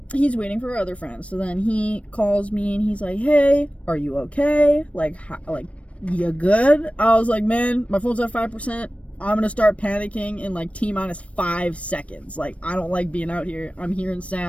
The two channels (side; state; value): right; late; 0.063 ms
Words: he's waiting for our other friends. So then he calls me and he's like, hey, are you okay? Like, you good? I was like, man, my phone's at 5%. I'm gonna start panicking in like T-minus 5 seconds. Like, I don't like being out here. I'm hearing